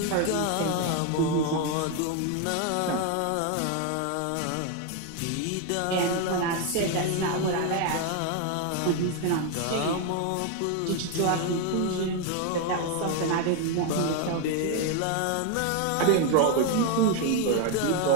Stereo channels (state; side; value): different; both; correlation 0.01